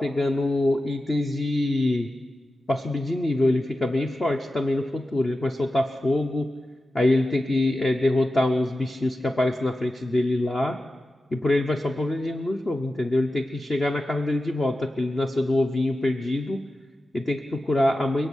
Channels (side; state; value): both; normal; correlation 0.93